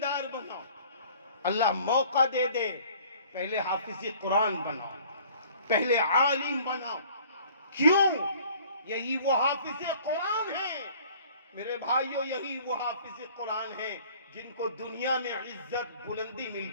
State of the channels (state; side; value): inverted; both; correlation -0.52